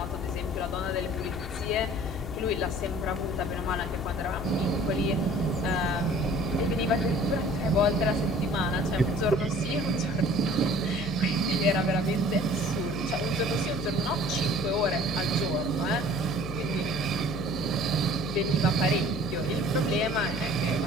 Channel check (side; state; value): left; noise; hum, 8 dB below the sound